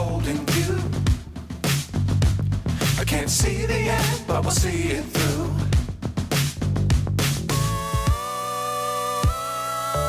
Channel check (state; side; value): identical; both; correlation 1.00